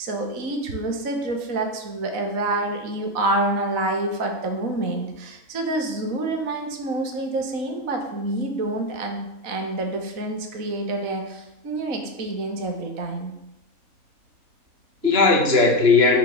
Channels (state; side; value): late; left; 3.9 ms